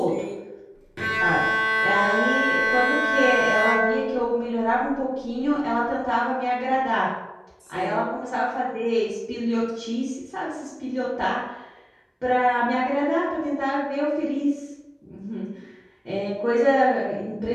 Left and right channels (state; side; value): identical; both; correlation 1.00